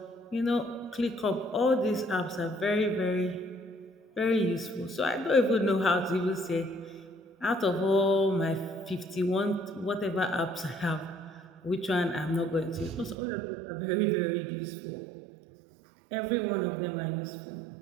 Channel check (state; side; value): drops out; left; at 13.2 s